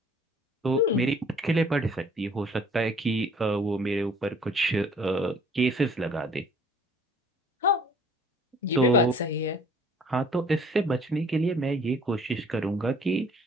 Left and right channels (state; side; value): normal; both; correlation 0.54